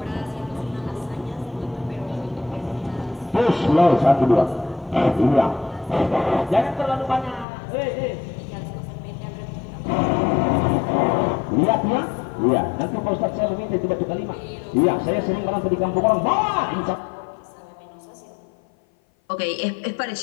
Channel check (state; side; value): drops out; right; at 7.5 s